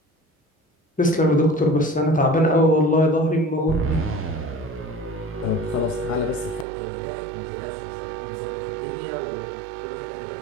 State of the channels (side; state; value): left; drops out; at 6.7 s